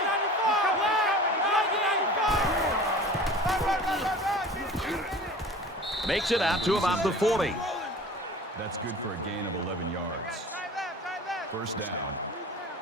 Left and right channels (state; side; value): normal; both; correlation 0.41